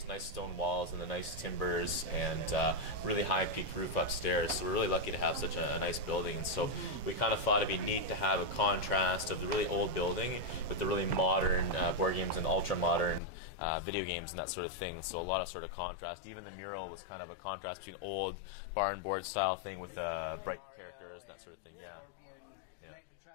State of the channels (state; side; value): drops out; right; at 13.2 s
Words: nice stone walls and the nice timbers and really high peak roof upstairs. So we're really lucky to have such a nice building. And so we kind of thought it'd be neat to have a contrast of the really old building with the really modern board games and ultra-modern video games and that sort of thing. So a lot of sort of contrast. Even the mural was kind of a contrast between old barn board style thing with the Mario and Scorpion, and then